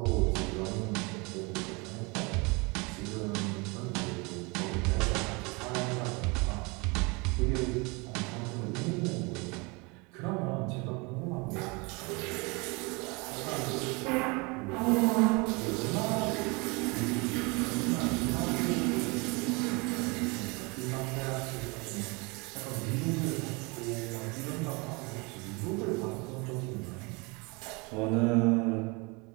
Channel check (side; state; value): left; quieter; 28.2 dB